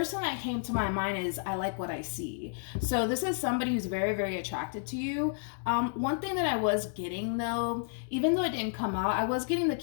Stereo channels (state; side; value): silent; right; digital silence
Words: thing that came to my mind is, I like what I see. So this is somebody who's very, very attracted to you. One thing that I was getting though, even though it didn't come out, I was getting the